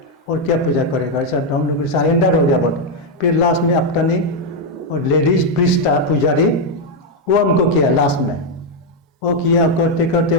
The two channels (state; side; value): normal; both; correlation 0.03